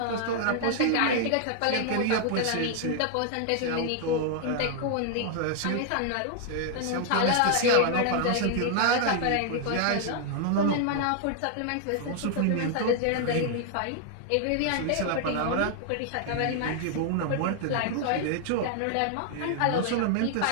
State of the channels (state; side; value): different; both; correlation 0.00